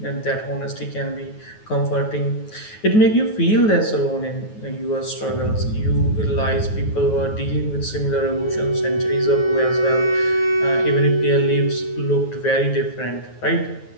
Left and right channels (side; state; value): right; late; 9.3 ms